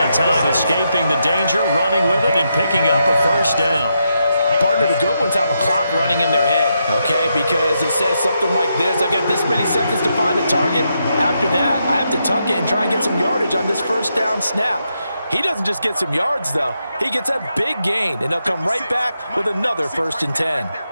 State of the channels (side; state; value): both; inverted; correlation -0.83